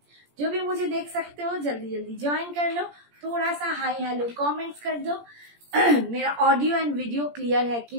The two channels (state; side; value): late; left; 17 ms